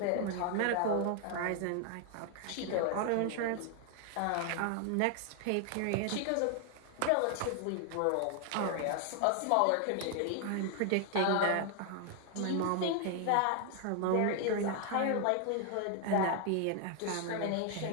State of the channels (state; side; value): different; both; correlation 0.00